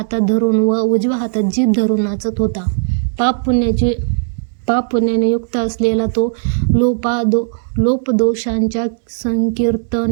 धरून व उजव्या हातात जीभ धरून नाचत होता. पाप पुण्याने युक्त असलेला तो लोपदोषांच्या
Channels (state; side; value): silent; left; digital silence